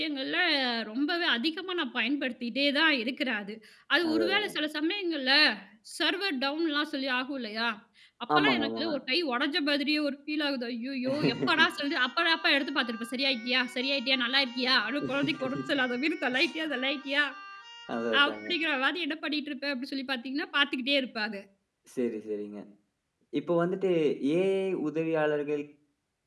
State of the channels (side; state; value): both; identical; correlation 1.00